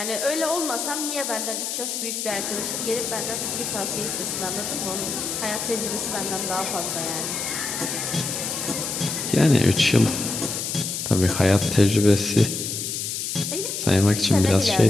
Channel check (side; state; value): left; noise; hiss, 3 dB below the sound